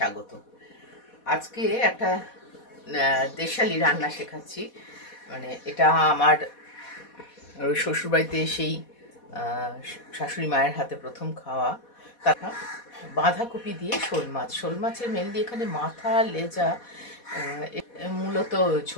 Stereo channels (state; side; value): late; right; 4.2 ms